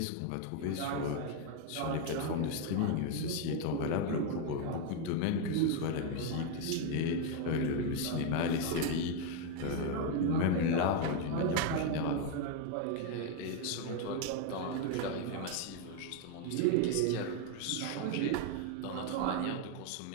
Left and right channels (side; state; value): both; different; correlation 0.01